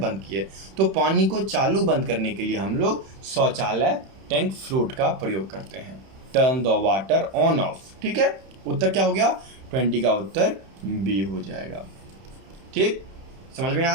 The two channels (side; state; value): left; late; 31 ms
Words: किए। तो पानी को चालू बंद करने के लिए हम लोग शौचालय टैंक फ्लोट का प्रयोग करते हैं। Turn the water on off, ठीक है। उत्तर क्या हो गया? 20 का उत्तर बी हो जाएगा, ठीक। समझ में